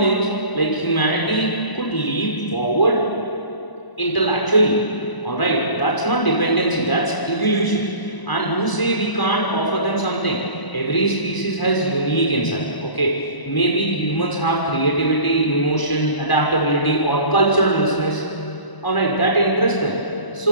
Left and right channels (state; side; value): late; right; 1.0 ms